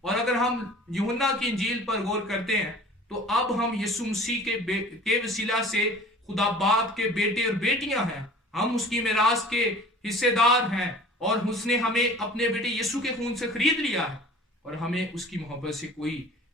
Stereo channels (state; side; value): normal; both; correlation 0.45